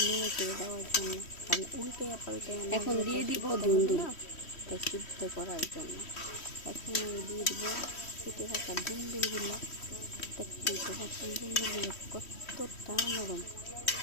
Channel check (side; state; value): right; late; 3.1 ms